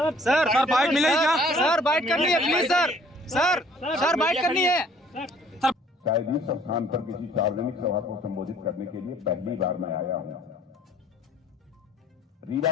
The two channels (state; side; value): normal; both; correlation 0.57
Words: बाइट मिलेगी क्या? सर बाइट करनी है प्लीज सर बाइट करनी है। शायद इस स्थान पर किसी सार्वजनिक सभा को संबोधित करने के लिए पहली बार मैं आया हूं। रीवा